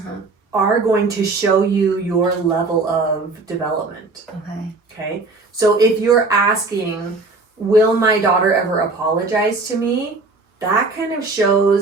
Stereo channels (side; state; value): left; quieter; 3.6 dB